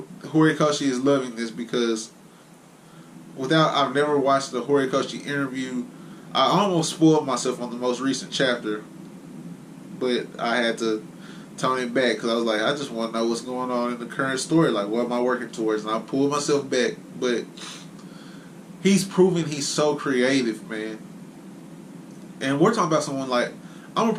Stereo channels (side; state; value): both; identical; correlation 1.00